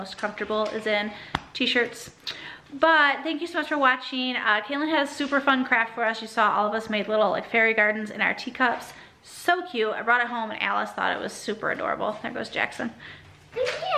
comfortable, is in t-shirts. But thank you so much for watching. Kaylin had a super fun craft for us. You saw all of us made little like fairy gardens in our teacups. So cute. I brought it home and Alice thought it was super adorable. There goes Jackson. Yeah.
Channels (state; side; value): identical; both; correlation 1.00